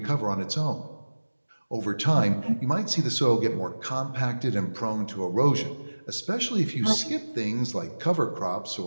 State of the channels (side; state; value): both; inverted; correlation -1.00